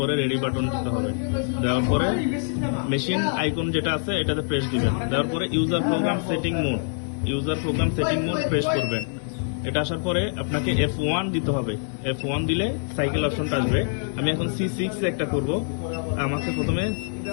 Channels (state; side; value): silent; right; 62 dB below the other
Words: রেডি বাটন দিতে হবে। দেওয়ার পরে মেশিন আইকন যেটা আছে এটাতে প্রেস দিবেন। দেওয়ার পরে user program setting mode press করবেন। এটা আসার পরে আপনাকে F1 দিতে হবে। F1 দিলে সাইকেল অপশনটা আসবে। আমি এখন C6 একটা করব। আমাকে প্রথমে